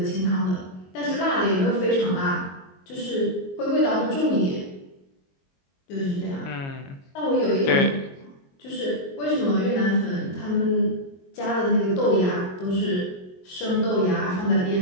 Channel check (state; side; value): late; right; 22 ms